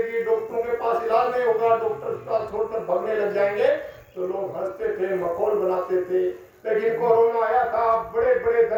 डॉक्टरों के पास इलाज नहीं होगा, डॉक्टर का छोड़कर भगने लग जाएंगे। तो लोग हंसते थे, मखौल बनाते थे। लेकिन कोरोना आया था, बड़े बड़े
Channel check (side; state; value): both; identical; correlation 1.00